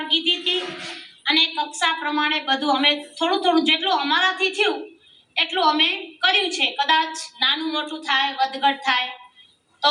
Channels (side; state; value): both; identical; correlation 1.00